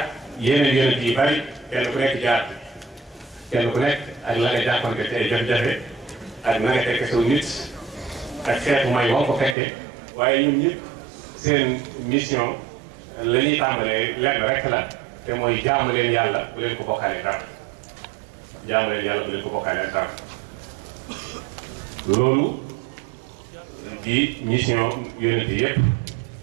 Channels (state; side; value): drops out; left; at 9.6 s